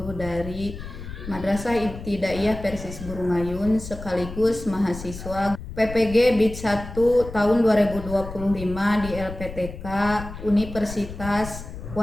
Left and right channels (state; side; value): noise; left; rumble, 11 dB below the sound